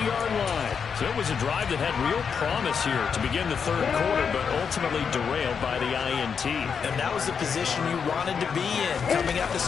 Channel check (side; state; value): right; quieter; 6.5 dB